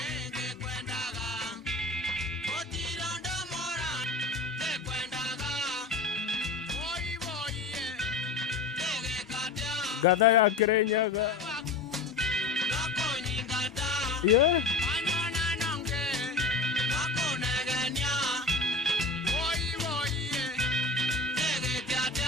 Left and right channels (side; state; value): right; quieter; 3.5 dB